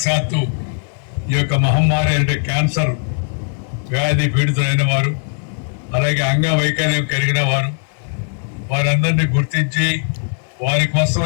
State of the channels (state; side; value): silent; right; 61 dB below the other